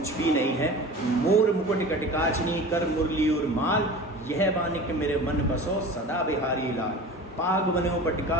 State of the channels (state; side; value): normal; both; correlation 0.36